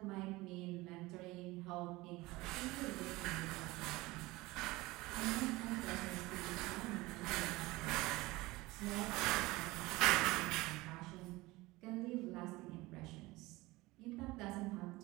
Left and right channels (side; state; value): left; quieter; 20.7 dB